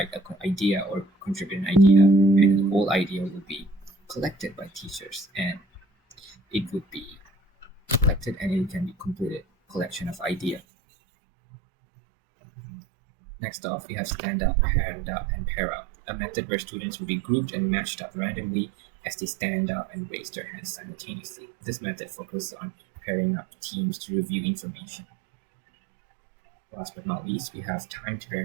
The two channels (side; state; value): left; drops out; at 10.6 s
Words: an idea or contribute an idea, and the whole idea will be collected by teachers, and it would be collected and it can be completed collection of idea. Next off, we have stand up, hand up, and pair up, a method where students will be grouped and matched up randomly as they stand up and raise their hands simultaneously. This method focuses on pairing up teams to review information. Last but not least, we have timed